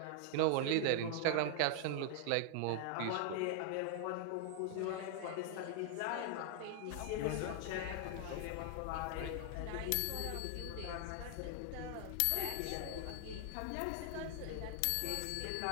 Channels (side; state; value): both; different; correlation 0.00